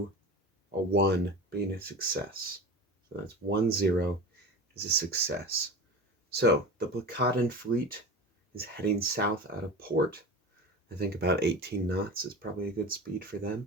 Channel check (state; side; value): normal; both; correlation 0.31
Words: a 1 being a success. So that's 1-0 is a success. So the Placatan fleet is heading south out of port. I think about 18 knots is probably a good speed for